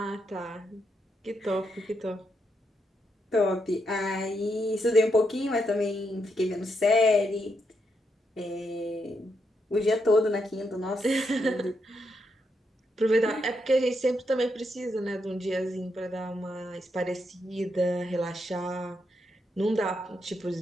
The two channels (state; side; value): normal; both; correlation 0.80